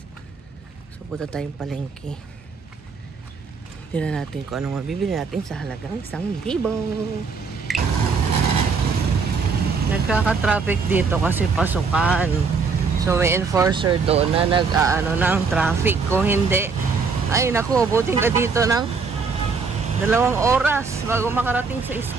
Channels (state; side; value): quieter; left; 5.0 dB